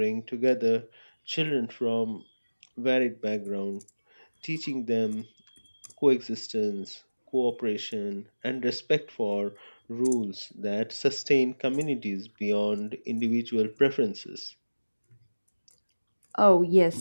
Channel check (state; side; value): inverted; both; correlation -1.00